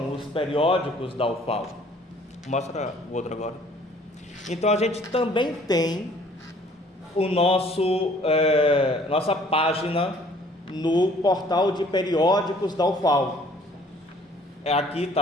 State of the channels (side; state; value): both; normal; correlation 0.56